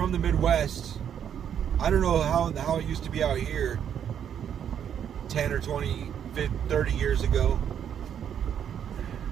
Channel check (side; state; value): left; quieter; 8.9 dB